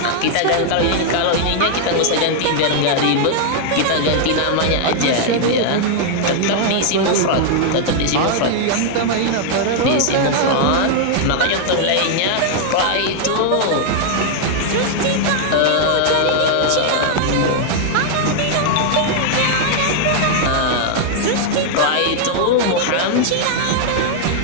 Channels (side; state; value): both; different; correlation -0.01